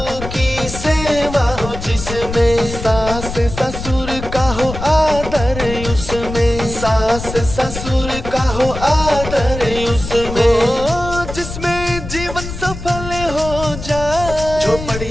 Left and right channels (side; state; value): left; noise; rumble, 9 dB below the sound